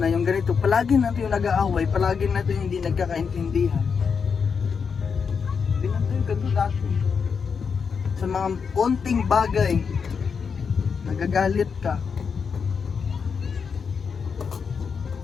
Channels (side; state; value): right; quieter; 6.0 dB